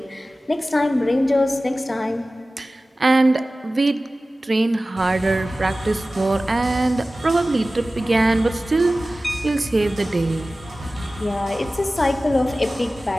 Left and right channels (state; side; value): normal; both; correlation 0.96